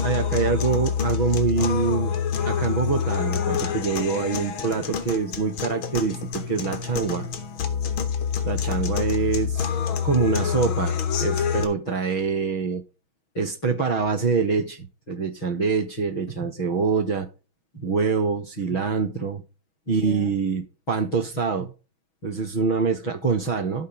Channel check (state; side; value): late; right; 6.2 ms